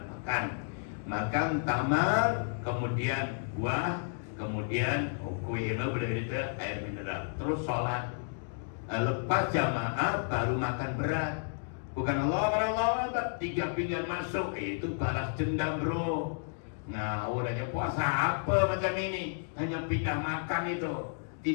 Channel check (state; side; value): silent; right; digital silence